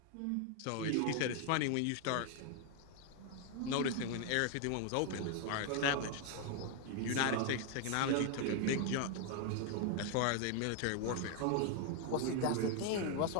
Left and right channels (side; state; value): both; different; correlation 0.00